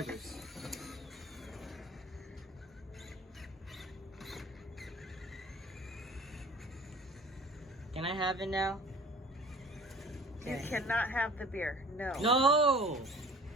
Can I have it now? You cannot have the beer. No. No!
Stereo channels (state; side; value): normal; both; correlation 0.47